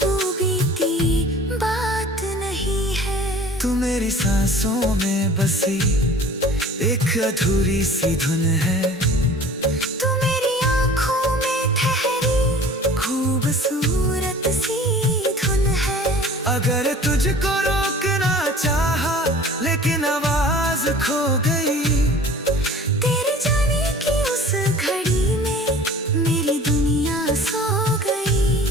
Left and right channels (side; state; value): both; normal; correlation 0.45